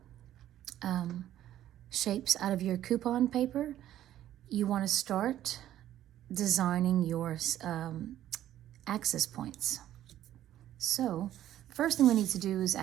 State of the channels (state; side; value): quieter; left; 12.4 dB